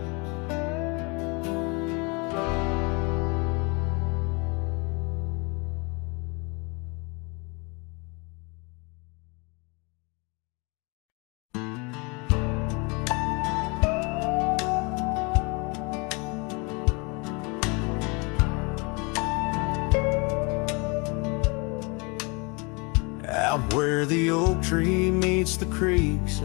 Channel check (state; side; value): quieter; right; 30.0 dB